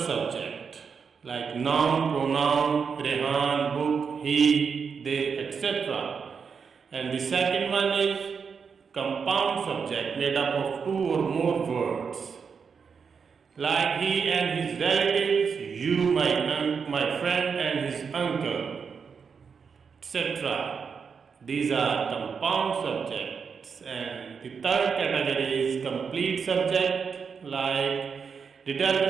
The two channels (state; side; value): quieter; left; 6.0 dB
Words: like noun, pronoun, Rehan, book, he, they, etc. And the second one is compound subject, made up of 2 or more words, like he and his relatives, you, my friend and his uncle, etc. These are compound subjects. And the third category is complete subject, like